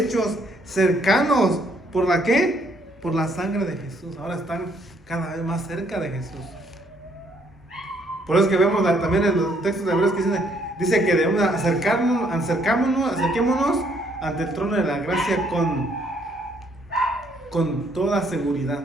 cercanos. ¿Por la qué? Por la sangre de Jesús. Ahora están cada vez más cerca de Jesús. Por eso es que vemos también en los textos de Hebreos que dice que debemos acerquémonos ante el trono de la gracia con toda seguridad.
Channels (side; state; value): both; normal; correlation 0.68